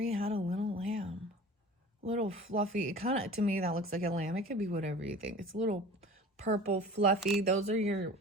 had a little lamb. Little fluffy. It kind of, to me, that looks like a lamb. It could be whatever you think. It's a little purple, fluffy. Those are your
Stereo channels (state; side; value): normal; both; correlation 0.40